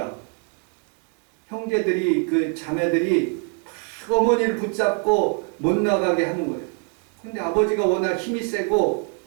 형제들이 그 자매들이 막 어머니를 붙잡고 못 나가게 하는 거예요. 근데 아버지가 워낙 힘이 세고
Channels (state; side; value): quieter; left; 36.4 dB